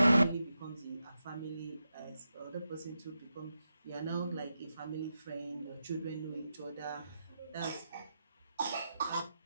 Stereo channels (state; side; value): inverted; both; correlation -0.88